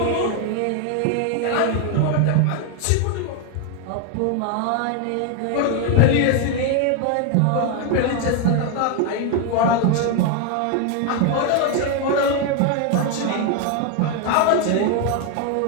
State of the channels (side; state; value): both; different; correlation 0.01